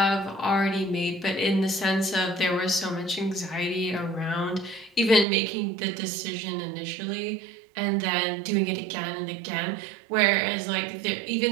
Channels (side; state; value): left; drops out; at 5.2 s